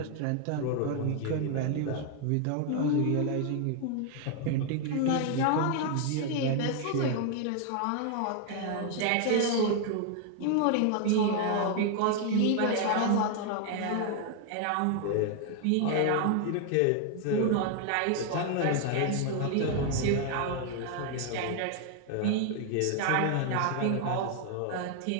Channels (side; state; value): both; different; correlation 0.00